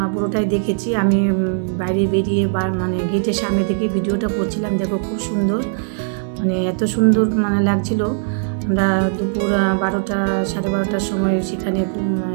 পুরোটাই দেখেছি। আমি বাইরে বেরিয়ে গেটের সামনে থেকে ভিডিওটা করছিলাম, দেখো খুব সুন্দর, এত সুন্দর লাগছিল। আমরা দুপুর 12টা 12:30টার সময় সেখানে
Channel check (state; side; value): silent; left; digital silence